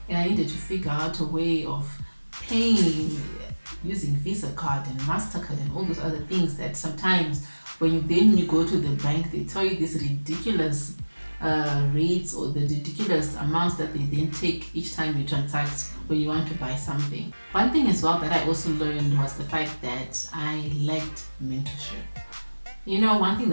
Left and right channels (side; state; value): both; inverted; correlation -1.00